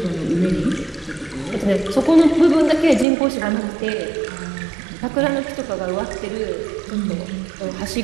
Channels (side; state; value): left; drops out; at 3.1 s